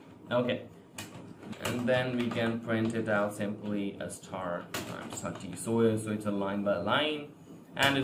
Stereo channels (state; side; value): identical; both; correlation 1.00